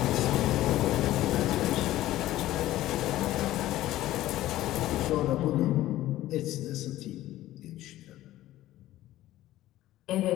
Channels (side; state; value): right; quieter; 15.0 dB